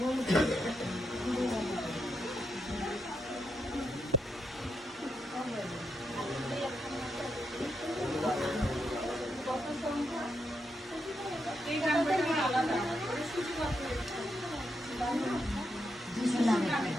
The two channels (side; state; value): both; normal; correlation 0.82